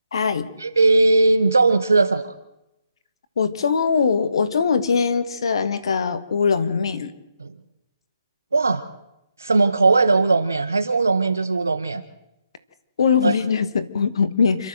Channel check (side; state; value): both; inverted; correlation -0.82